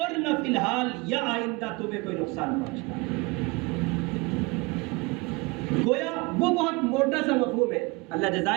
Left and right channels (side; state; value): left; quieter; 25.9 dB